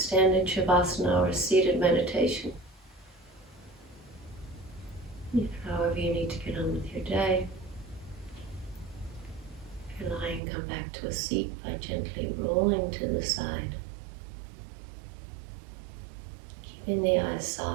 Shavasana or a seated meditation. If, however, you need to get on with your day, if you're lying, come back to a seat by gently rolling to the side. Keeping the eyes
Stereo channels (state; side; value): drops out; left; at 10.4 s